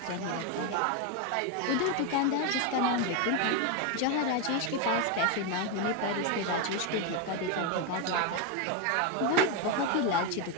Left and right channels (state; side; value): different; both; correlation 0.02